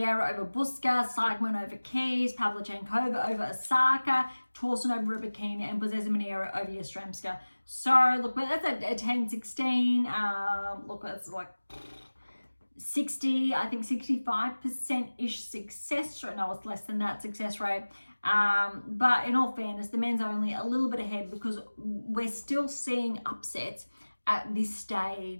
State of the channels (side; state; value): both; inverted; correlation -1.00